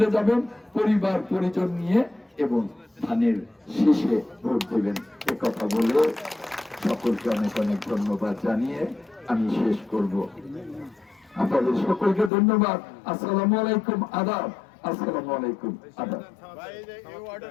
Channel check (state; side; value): drops out; right; at 12.3 s